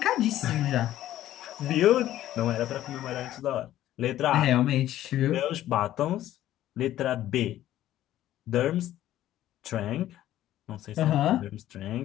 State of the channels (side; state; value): right; quieter; 13.3 dB